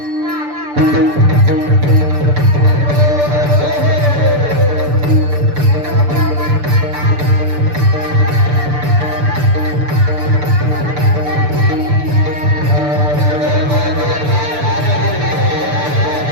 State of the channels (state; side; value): late; left; 6.8 ms